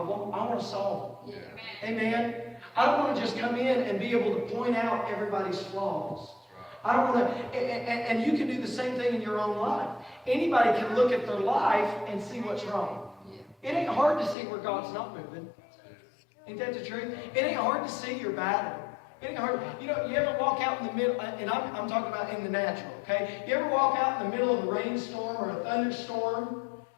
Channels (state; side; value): drops out; right; at 14.4 s